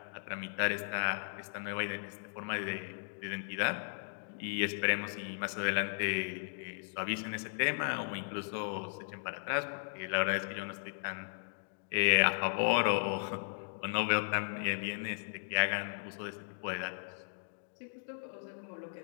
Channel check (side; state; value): right; silent; digital silence